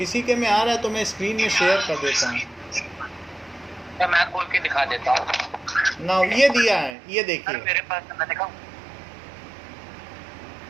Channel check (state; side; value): drops out; left; at 7.0 s